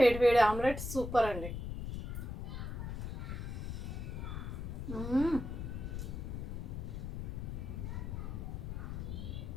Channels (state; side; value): noise; left; rumble, 5 dB below the sound